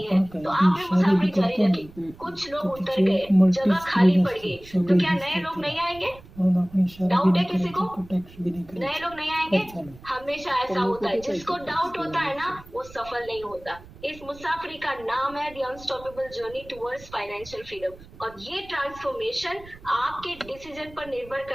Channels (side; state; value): right; noise; rumble, 20 dB below the sound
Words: है, तो आपने मुसाफरी जारी रखी। कुछ लोग उतर गए, जगह खाली पड़ गई, तो क्या नए लोग नहीं आएंगे? हम अपनी शादी भी डाउट है नहीं किसी करेंगे को? तो टैक्स भी नहीं करेंगे। नए लोग नहीं आएंगे। अच्छा नहीं। हमेशा पर ऐसा लोगों होता है, को जिसको कैसे डाउट होता है ना टैक्स वो सफल नहीं होता। इस मुसाफिरी का नाम है the unstoppable journey towards financial freedom. और ये ट्रांसफॉर्मेशन आपके डिसीजन पर निर्भर